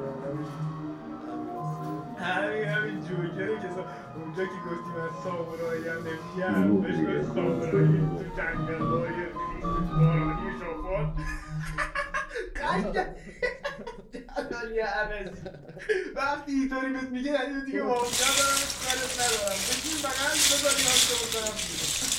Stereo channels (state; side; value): identical; both; correlation 1.00